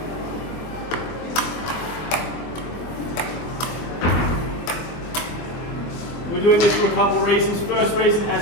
We're doing this for a couple of reasons. First reason,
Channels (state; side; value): late; right; 24 ms